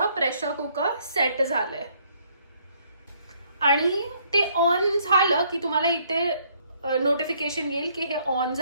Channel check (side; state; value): both; inverted; correlation -0.67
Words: प्रेशर कुकर सेट झालंय. आणि ते ऑन झालं की तुम्हाला इथे नोटिफिकेशन येईल की हे ऑन